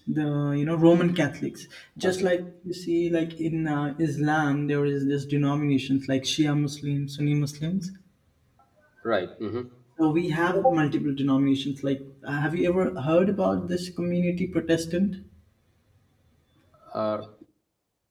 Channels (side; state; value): both; identical; correlation 1.00